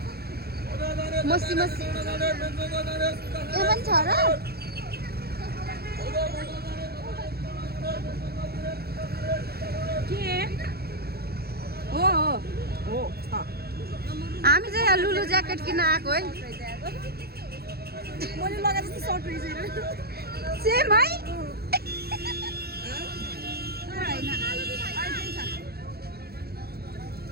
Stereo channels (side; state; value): left; late; 0.46 ms